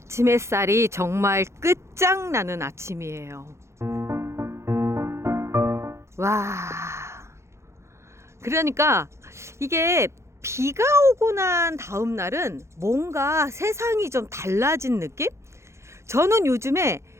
햇살이 정말 끝장나는 아침이에요. 와. 그러니까 이게 비가 오고 난 다음 날은 뭔가 세상이 좀 달라진 느낌? 저는 요즘에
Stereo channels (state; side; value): late; left; 0.13 ms